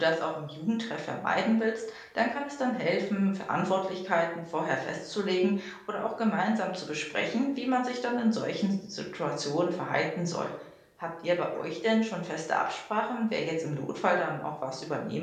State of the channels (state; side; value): identical; both; correlation 1.00